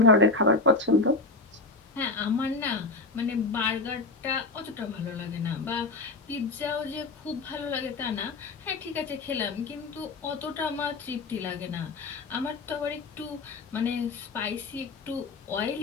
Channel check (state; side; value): quieter; right; 3.5 dB